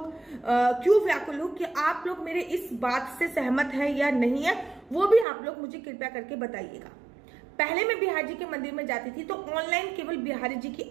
क्यों व्याकुल हो, कि आप लोग मेरे इस बात से सहमत है या नहीं है, वो भी आप लोग मुझे कृपया करके बताइएगा। पहले मैं बिहारी जी के मंदिर में जाती थी तो ऑनलाइन केवल बिहारी जी की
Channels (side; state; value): left; drops out; at 5.2 s